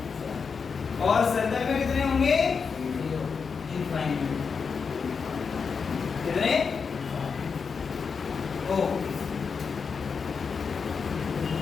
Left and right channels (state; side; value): quieter; right; 5.6 dB